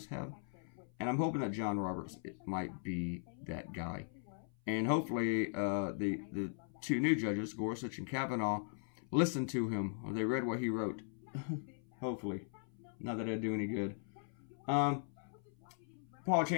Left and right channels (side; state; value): right; silent; 52 dB below the other